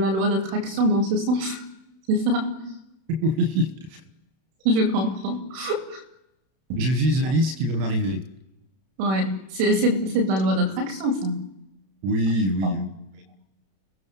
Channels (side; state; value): left; late; 31 ms